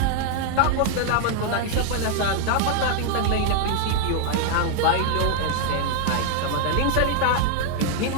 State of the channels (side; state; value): both; different; correlation 0.00